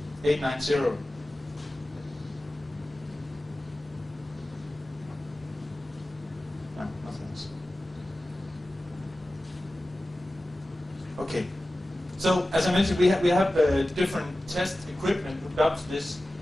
890. No, nothing else. Okay. So, as I mentioned, we have different test equipment hooked up to this.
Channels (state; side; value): normal; both; correlation 0.95